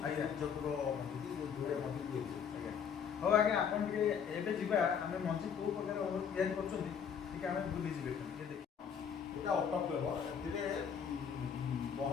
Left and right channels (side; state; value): right; quieter; 7.3 dB